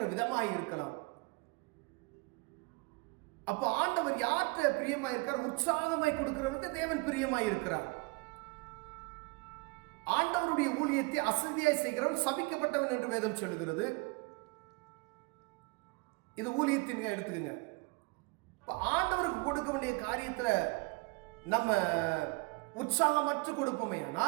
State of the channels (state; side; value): quieter; left; 28.0 dB